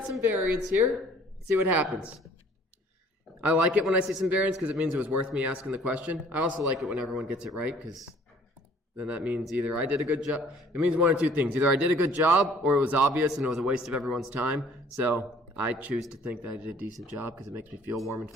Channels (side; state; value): both; normal; correlation 0.55